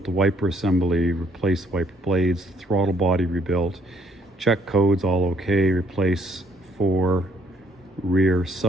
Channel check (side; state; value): both; normal; correlation 0.65